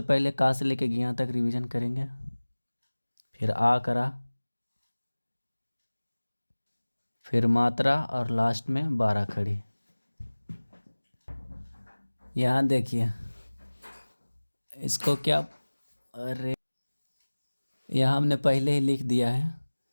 पहले का से लेके ज्ञा तक रिवीजन करेंगे, फिर आ करा, फिर मात्रा और लास्ट में बारह खड़ी। यहाँ देखिए इसको क्या, अरे यहाँ हमने पहले ही लिख दिया है।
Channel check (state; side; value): inverted; both; correlation -1.00